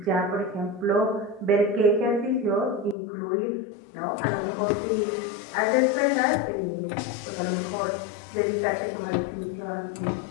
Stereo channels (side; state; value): right; drops out; at 3.0 s